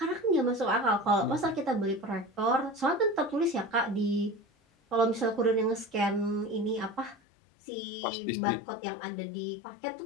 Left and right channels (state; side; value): drops out; right; at 7.2 s